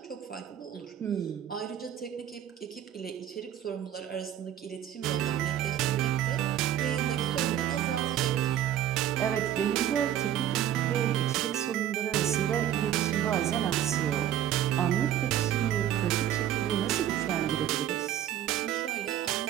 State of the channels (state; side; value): quieter; left; 11.0 dB